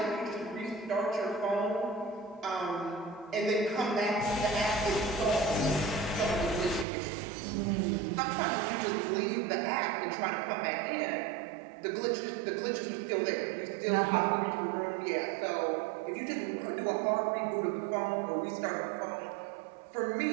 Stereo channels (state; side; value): drops out; left; at 6.9 s